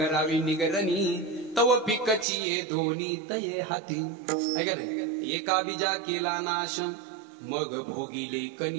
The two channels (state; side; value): drops out; left; at 2.2 s